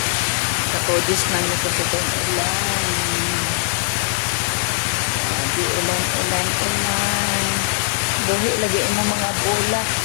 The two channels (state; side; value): silent; right; 57 dB below the other